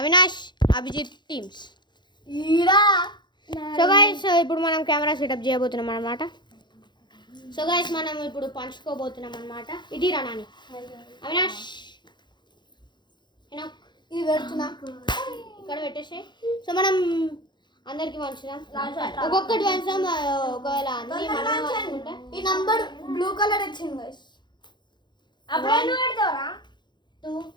Avinash Abhijeet teams. So guys ఇప్పుడు మనం కెమెరా సెటప్ చేయబోతున్నాం అనమాట. సో గైస్ మనం ఇప్పుడు పంచుకోబోతున్నాం అనమాట. ఇది రా నాని, అవినాష్, హెనాక్ ఇది పెడుతున్నా ఇక్కడ పెట్టేసి. సో మనం అందరికి పంచుదాం, ఒక్కొక్కటి పంచుదాం. ఒకవేళ అన్ని మనమే పంచుకుంటే ఈ నంబర్ బ్లూ కలర్ వచ్చింది గైస్. అప్పుడు నువ్వు పెడతావరా? 2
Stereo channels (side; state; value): right; late; 0.22 ms